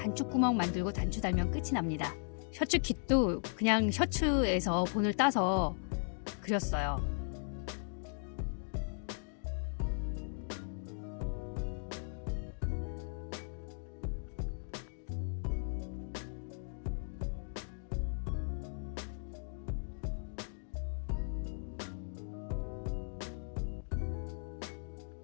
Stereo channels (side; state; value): right; silent; digital silence